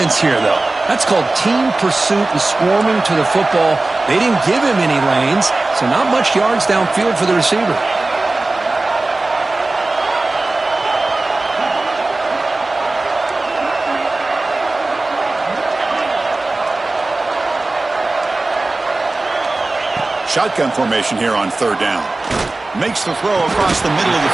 here, though? That's called team pursuit and swarming to the football. They didn't give him any lanes, so not much yards downfield for the receiver. Shotgun formation here on third down. Makes the throw across the middle of the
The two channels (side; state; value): left; quieter; 3.1 dB